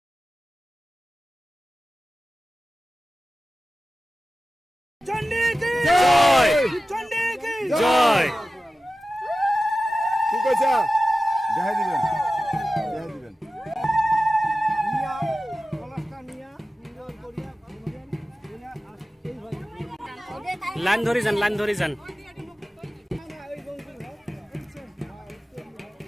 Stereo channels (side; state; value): both; normal; correlation 0.94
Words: চণ্ডী কি জয়, চণ্ডী কি জয়। ঠিক আছে দেখা দিবেন लाइन धरी जान